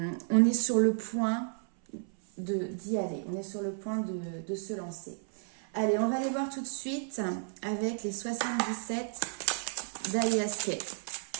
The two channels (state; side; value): silent; left; 56 dB below the other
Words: est sur le point d'y aller. On est sur le point de se lancer. Allez, on va aller voir tout de suite avec les 77 d'Aliaske.